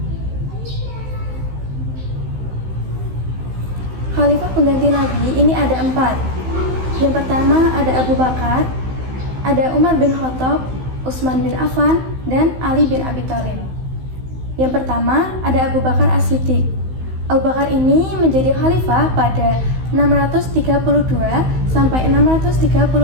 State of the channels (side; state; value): left; late; 16 ms